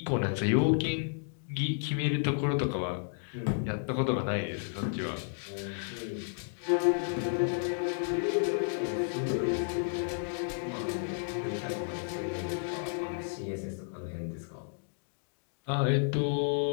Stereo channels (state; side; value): silent; right; digital silence